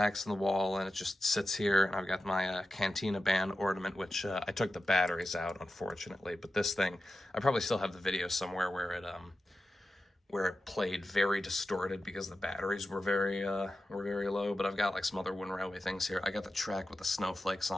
in the wall, and it just sits here. And I've got my Cantina band ornament, which I took the batteries out, unfortunately. But this thing, I probably still have the video somewhere where it played very distorted because the batteries were very low. But I've got like some other Wooden Railway things here. I got the track with the snowflakes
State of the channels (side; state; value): both; normal; correlation 0.91